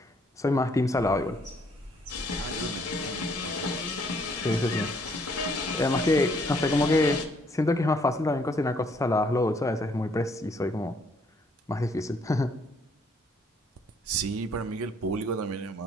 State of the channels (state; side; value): normal; both; correlation 0.66